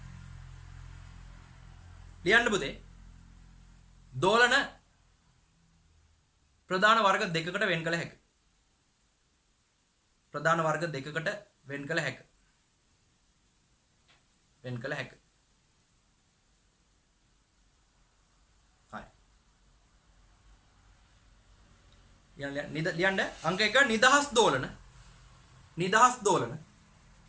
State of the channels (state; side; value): identical; both; correlation 1.00